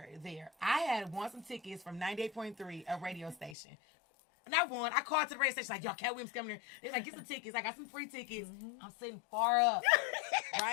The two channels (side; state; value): right; drops out; at 3.6 s